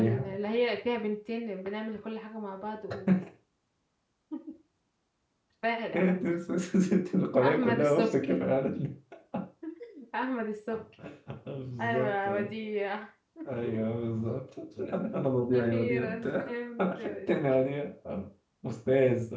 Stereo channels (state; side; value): identical; both; correlation 1.00